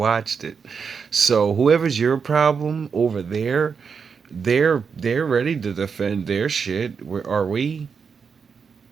it. So whoever's your problem over there, they're ready to defend their shit. Are we?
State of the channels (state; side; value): quieter; left; 6.0 dB